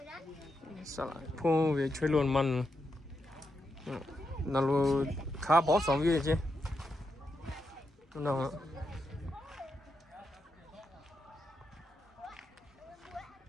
xả lại pu về chơi luôn mặn nào khá bỏ sống gì chứ nào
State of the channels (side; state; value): both; normal; correlation 0.84